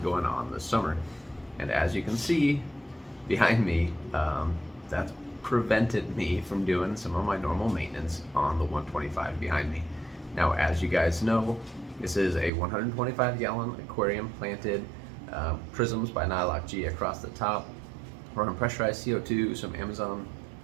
going on this summer. And as you can see behind me, that's prevented me from doing some of my normal maintenance on the 125 behind me. Now, as you guys know, this is a 125-gallon aquarium planted, prisms by Nylock G across the top, running pressurized CO2, some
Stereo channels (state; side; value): drops out; left; at 12.5 s